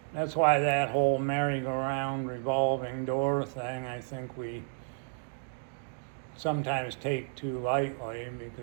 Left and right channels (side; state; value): left; silent; digital silence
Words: that's why that whole merry-go-round revolving door thing, I think we sometimes take too lightly,